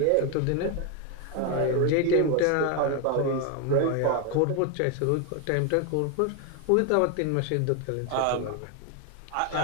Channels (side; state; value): both; different; correlation 0.01